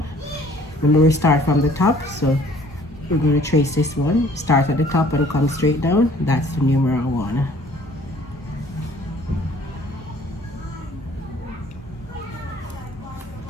Remember, we start from the top, so we're going to trace this one. Start at the top and come straight down. That's the numeral 1.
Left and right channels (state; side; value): normal; both; correlation 0.55